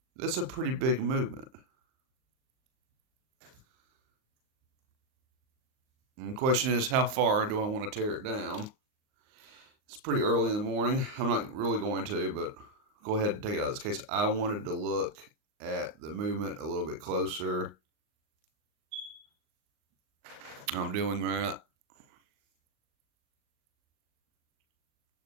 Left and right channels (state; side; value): late; left; 38 ms